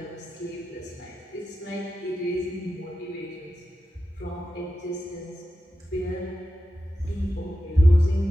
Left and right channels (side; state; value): both; normal; correlation 0.91